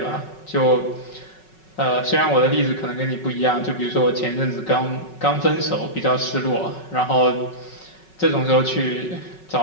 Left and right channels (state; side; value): late; right; 5.4 ms